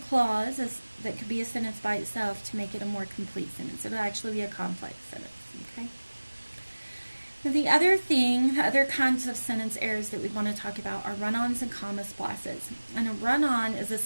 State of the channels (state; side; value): inverted; both; correlation -1.00